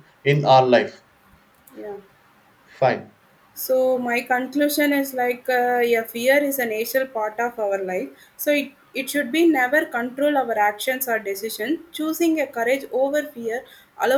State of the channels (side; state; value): both; identical; correlation 1.00